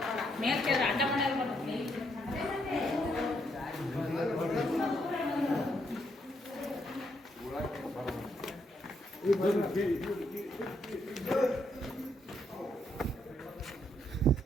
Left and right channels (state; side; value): normal; both; correlation 0.75